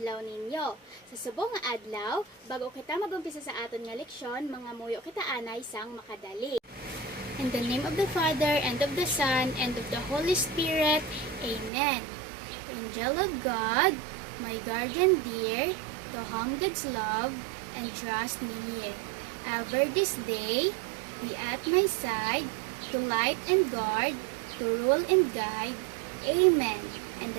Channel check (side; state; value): left; drops out; at 11.7 s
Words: ninyo. Sa subong nga adlaw, bago kita magumpisa sa aton nga leksyon, mga muyo kita anay sang makadali. In the name of the Father, and of the Son, and of the Holy Spirit, Amen. Angel of God, my guardian dear, to whom God's love and trust me here. Ever this day, be at my side, to light and guard, to rule and guide. Amen. In